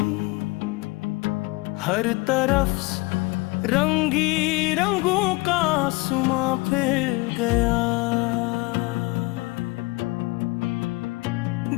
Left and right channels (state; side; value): quieter; right; 24.1 dB